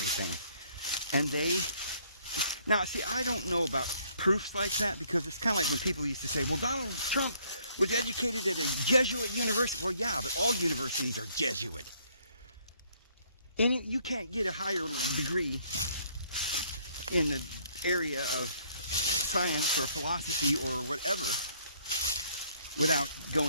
And now, see, I don't know about proofs like that, because it's kind of like when people used to say, well, Donald Trump was educated at a Jesuit university. Well, yeah, but all universities are Jesuit. And you can't get a higher degree in the area of science or philosophy or whatever without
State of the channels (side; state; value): both; inverted; correlation -0.64